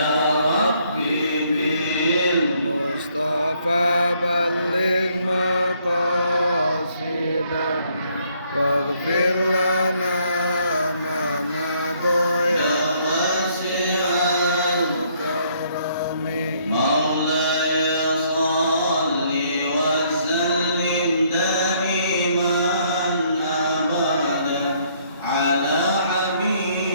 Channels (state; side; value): inverted; both; correlation -0.67